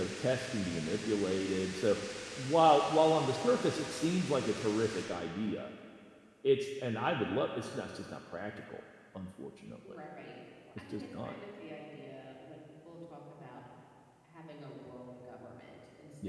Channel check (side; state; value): both; identical; correlation 1.00